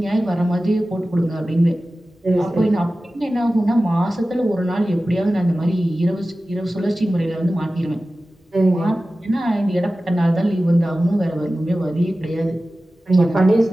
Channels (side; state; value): both; normal; correlation 0.95